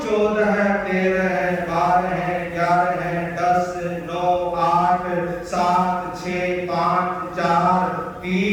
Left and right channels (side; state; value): both; identical; correlation 1.00